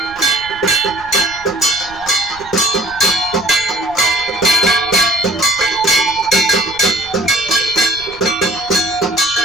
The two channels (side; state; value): right; noise; rumble, 22 dB below the sound